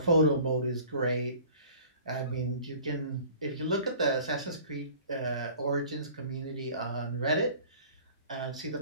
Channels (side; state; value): both; inverted; correlation -0.48